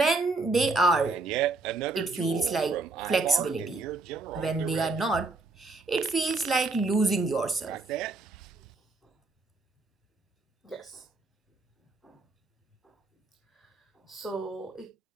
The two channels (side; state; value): left; quieter; 3.4 dB